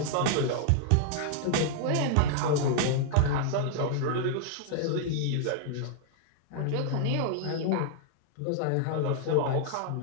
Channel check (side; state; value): both; different; correlation -0.01